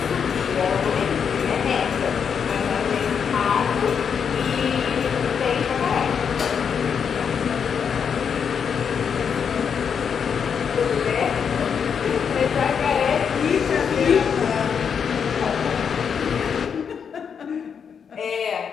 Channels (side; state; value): right; quieter; 7.0 dB